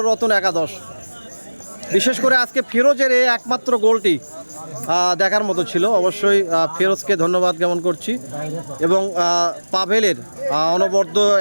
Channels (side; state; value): both; inverted; correlation -1.00